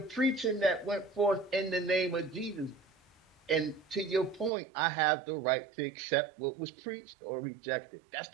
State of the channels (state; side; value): drops out; left; at 4.5 s